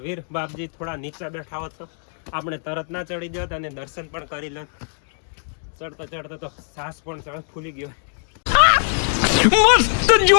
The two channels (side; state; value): right; silent; digital silence